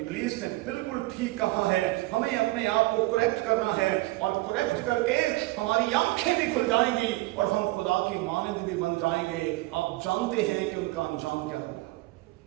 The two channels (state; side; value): quieter; left; 20.5 dB